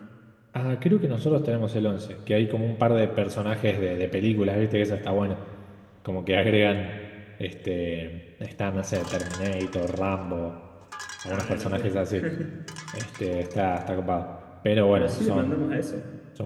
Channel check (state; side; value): identical; both; correlation 1.00